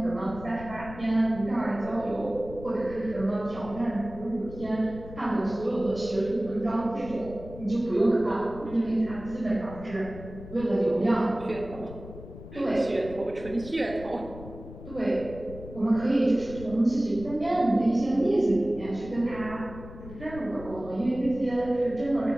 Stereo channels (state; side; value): noise; left; rumble, 14 dB below the sound